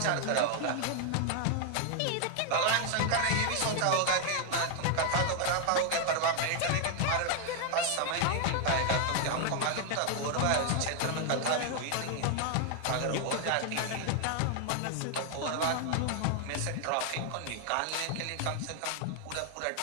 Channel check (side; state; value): both; different; correlation 0.00